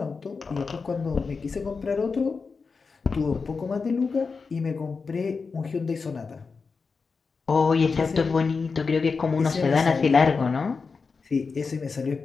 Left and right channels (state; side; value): quieter; right; 4.8 dB